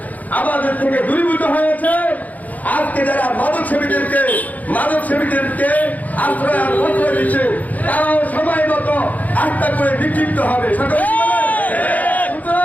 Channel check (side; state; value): right; late; 0.078 ms